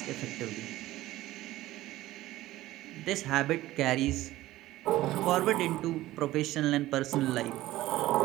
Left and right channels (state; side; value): quieter; left; 16.1 dB